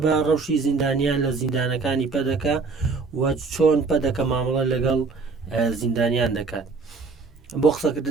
بە ڕەوشی زیندانیان لە زیندانەکانی پەدەکە و چۆن پەدەکە مامەڵە لەگەڵ زیندانیان دەکات. بۆ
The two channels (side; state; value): left; quieter; 4.3 dB